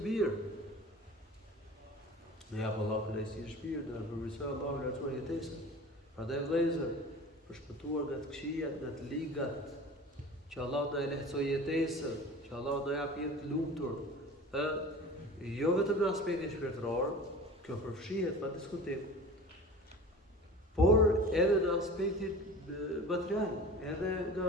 mirë. Ne jap Allahu kënaqësi në shpirt, dhe përmirësoj Allahu lartuar jetesën. Prandaj vëllezër, për shpëtuar nga të këqijat, nga të ligat, që Allahu na e lehtësoj jetesën, që Allahu na jap jetë të lumtur, jo vetëm në aspektin shpirtëror, kjo përfshihet pa diskutim, por edhe në aspektin material, edhe nga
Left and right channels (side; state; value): both; normal; correlation 0.38